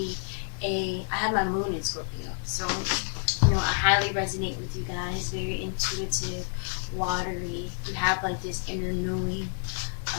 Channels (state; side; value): silent; right; 59 dB below the other